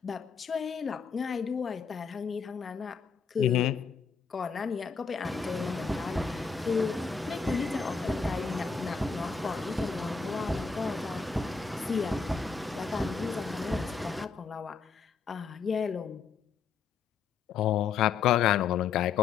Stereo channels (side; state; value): right; quieter; 5.5 dB